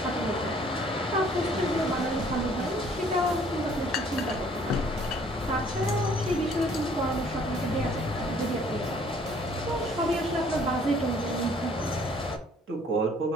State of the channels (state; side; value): normal; both; correlation 0.58